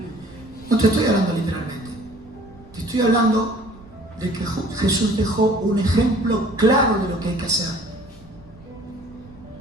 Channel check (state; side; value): noise; right; rumble, 24 dB below the sound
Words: No te estoy hablando literalmente. Te estoy hablando de que Jesús dejó un ejemplo claro de lo que hay que hacer.